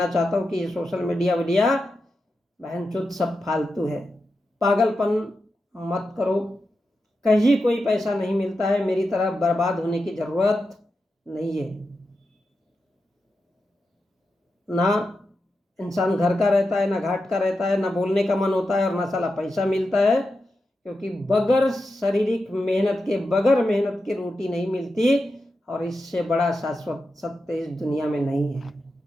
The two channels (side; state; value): both; normal; correlation 0.89